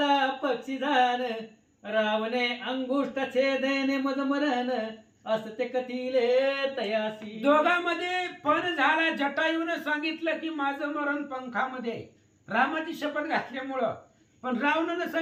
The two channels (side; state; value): both; identical; correlation 1.00